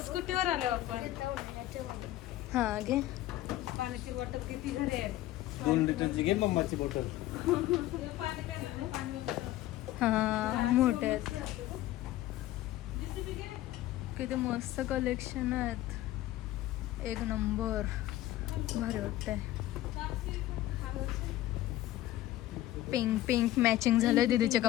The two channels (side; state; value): right; quieter; 15.2 dB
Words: स्कूटीवर आलो आपण. हा घे. पाण्याची बॉटल किती घरी आहे. 2 लिटरची घे मम्माची बॉटल. हा मोठे आहेत. किती मस्त कलेक्शन आहेत. एक नंबर भारी वाटतंय. पिंक पिंक मॅचिंग झालंय दीदीच्या